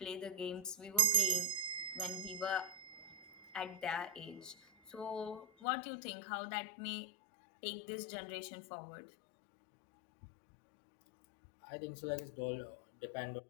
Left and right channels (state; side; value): drops out; right; at 5.5 s